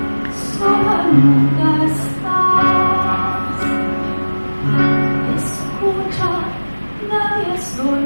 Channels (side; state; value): both; inverted; correlation -1.00